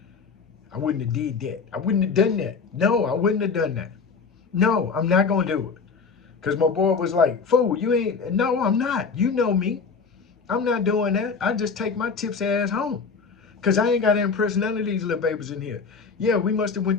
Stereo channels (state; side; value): quieter; right; 5.2 dB